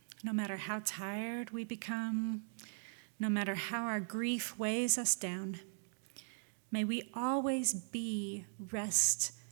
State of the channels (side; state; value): left; silent; digital silence